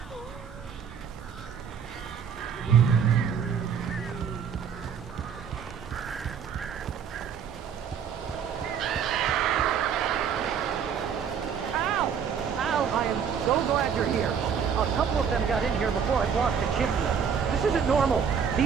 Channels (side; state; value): left; quieter; 7.3 dB